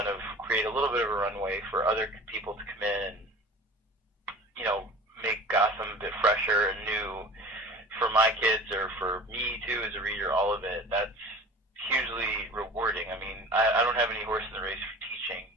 of create a little bit of a runway for other people to come in and, make Gotham a bit fresher and new for my kids or for me too as a reader, all of it, that's hugely rewarding. I mean, I don't have any horse in the race for teaching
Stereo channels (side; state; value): both; normal; correlation 0.39